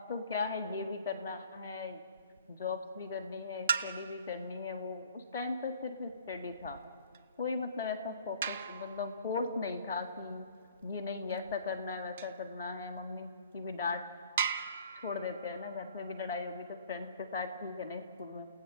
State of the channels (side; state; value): both; inverted; correlation -0.53